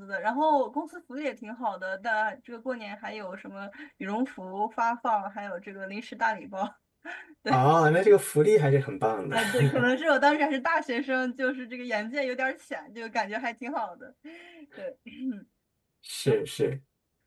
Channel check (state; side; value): identical; both; correlation 1.00